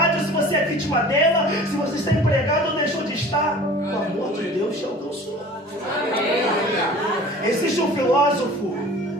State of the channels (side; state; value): both; normal; correlation 0.44